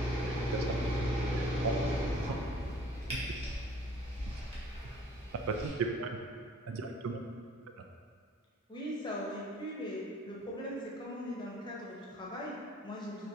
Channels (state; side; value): normal; both; correlation 0.54